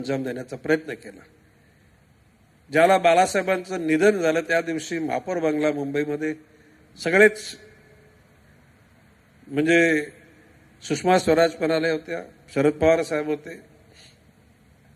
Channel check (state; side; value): identical; both; correlation 1.00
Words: देण्याचा प्रयत्न केला. ज्याला बाळासाहेबांचं निधन झालं त्या दिवशी महापौर बंगला मुंबईमध्ये सगळेच, म्हणजे सुषमा स्वराज पण आल्या होत्या, शरद पवार साहेब होते.